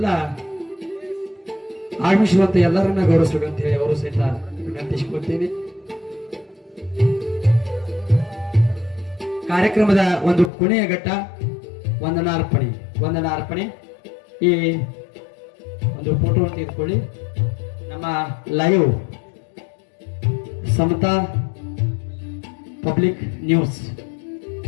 ಆಗಮಿಸುವಂತ ಎಲ್ಲರನ್ನ ಗೌರವಿಸಬೇಕಂತ ಹೇಳಿ ಅವರು ಸಹಿತ ವಿನಂತಿಸಿಕೊಳ್ತೇನೆ. ಕಾರ್ಯಕ್ರಮದ ಒಂದು ಕೊನೆಯ ಘಟ್ಟ ವಂದನಾರ್ಪಣೆ. ಈ ಒಂದು ಫೋಟೋ ತೆಗೆದುಕೊಳ್ಳಿ. ನಮ್ಮ ಲೈವ್ ಸಮತಾ ಪಬ್ಲಿಕ್ ನ್ಯೂಸ್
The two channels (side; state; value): right; drops out; at 10.5 s